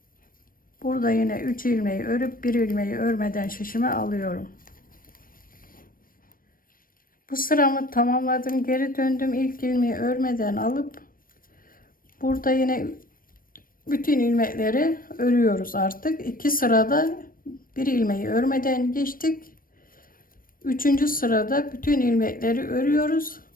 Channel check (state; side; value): late; right; 0.41 ms